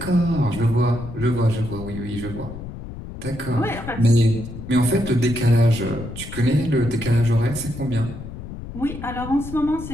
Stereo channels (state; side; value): noise; left; rumble, 11 dB below the sound